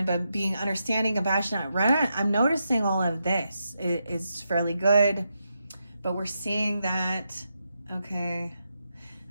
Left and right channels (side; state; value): both; inverted; correlation -0.85